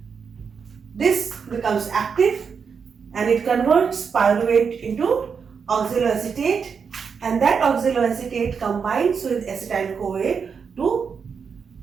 this becomes active and it converts pyruvate into oxaloacetate, and that oxaloacetate combines with acetyl-CoA to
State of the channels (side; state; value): left; quieter; 6.1 dB